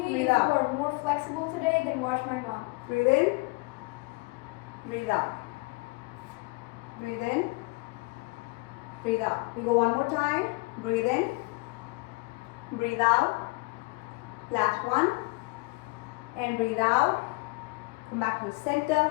Breathe if out. you are more flexible today, then watch my mom. breathe in, breathe out. Breathe in, breathe out. We go one more time. Breathe in, breathe out. Last one. And breathe out. Come back to the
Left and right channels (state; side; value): quieter; right; 27.9 dB